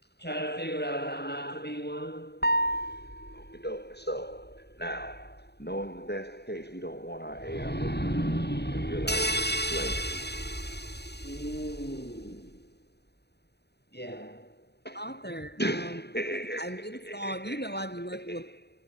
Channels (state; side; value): late; right; 0.48 ms